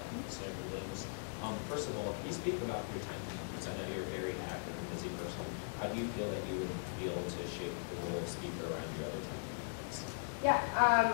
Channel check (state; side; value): silent; right; digital silence